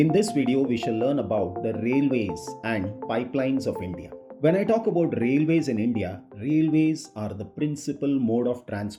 this video, we shall learn about the railways and pipelines of India. When I talk about railways in India, railways are the principal mode of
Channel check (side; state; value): both; identical; correlation 1.00